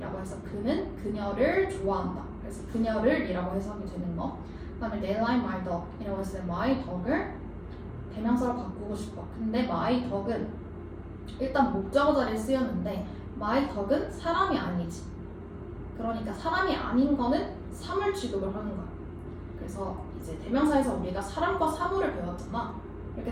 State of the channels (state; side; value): identical; both; correlation 1.00